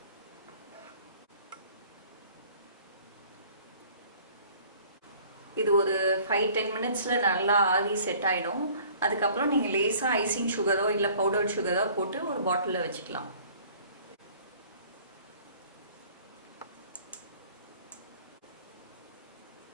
இது ஒரு 5-10 மினிட்ஸில் நல்லா ஆவி செட் ஆகிடும். அதுக்கப்புறம் நீங்கள் லேசாக ஐசிங் சுகரோ இல்லை பவுடர் சுகரோ போட்டு ஒரு பாட்டிலில் வச்சுக்கலாம்.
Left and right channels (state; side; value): inverted; both; correlation -0.52